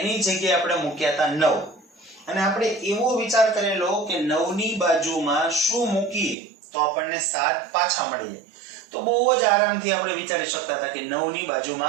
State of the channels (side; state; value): left; drops out; at 6.4 s